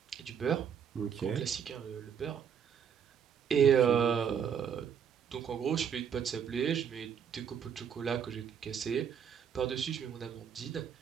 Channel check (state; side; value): quieter; left; 7.7 dB